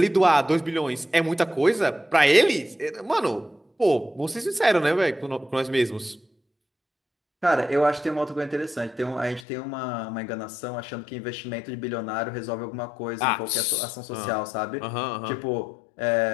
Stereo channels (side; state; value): right; drops out; at 9.5 s